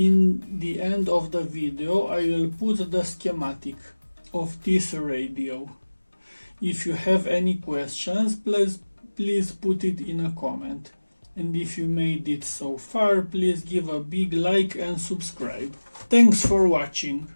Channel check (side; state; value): both; inverted; correlation -1.00